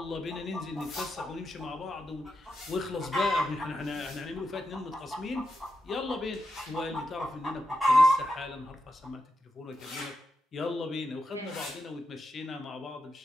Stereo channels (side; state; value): both; normal; correlation 0.86